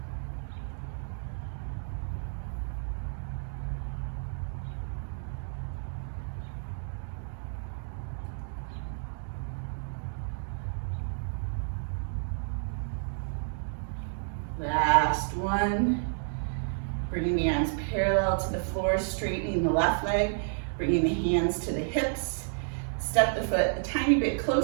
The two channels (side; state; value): left; silent; digital silence